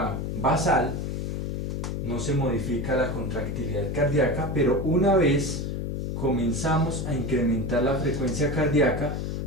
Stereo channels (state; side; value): noise; left; hum, 3 dB below the sound